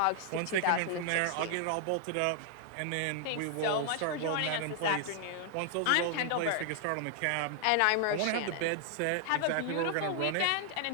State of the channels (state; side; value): different; both; correlation 0.00